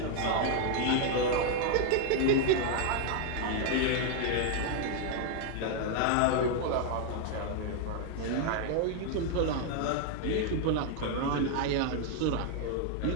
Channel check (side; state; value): both; different; correlation 0.00